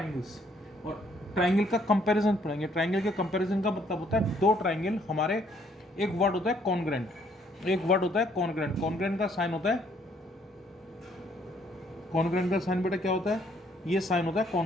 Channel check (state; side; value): normal; both; correlation 0.66